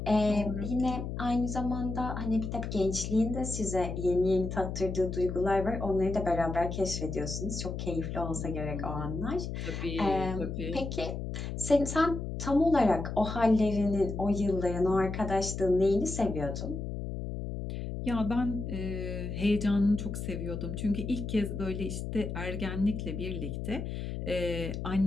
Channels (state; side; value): noise; left; hum, 5 dB below the sound